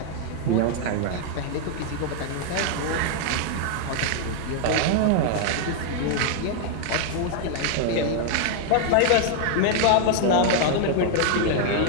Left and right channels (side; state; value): both; different; correlation 0.00